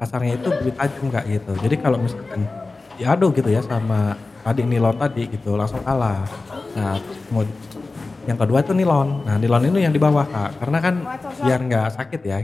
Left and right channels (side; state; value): right; quieter; 3.5 dB